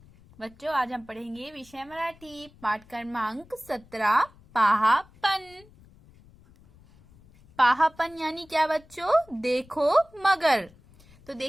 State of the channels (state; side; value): noise; left; rumble, 26 dB below the sound